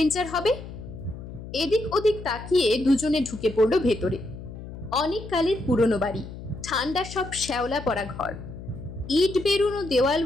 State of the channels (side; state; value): left; noise; hum, 12 dB below the sound